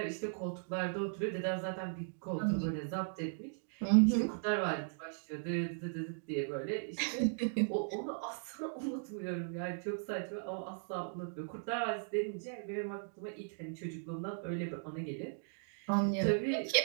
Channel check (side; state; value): left; silent; digital silence